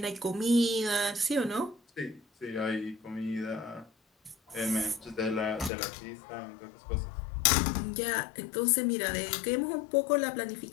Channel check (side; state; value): right; drops out; at 5.7 s